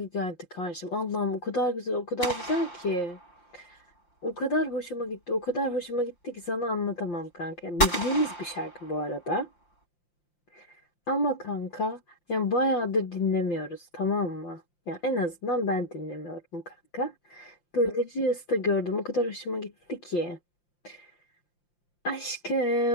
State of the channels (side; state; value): right; late; 5.8 ms